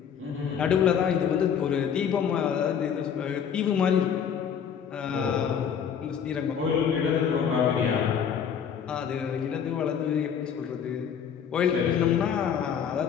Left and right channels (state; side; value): quieter; right; 7.8 dB